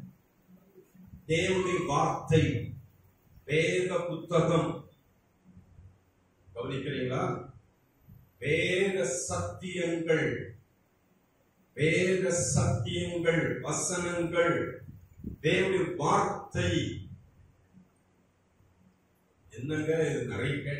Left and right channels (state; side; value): identical; both; correlation 1.00